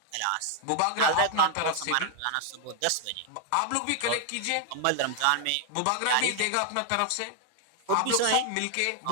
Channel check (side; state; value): both; different; correlation 0.00